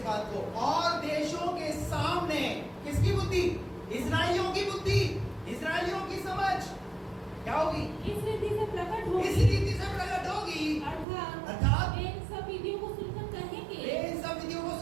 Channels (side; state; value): left; drops out; at 11.1 s